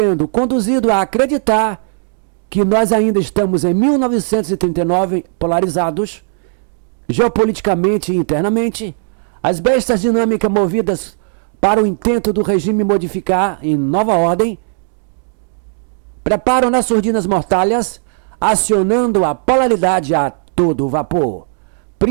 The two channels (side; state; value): left; silent; 69 dB below the other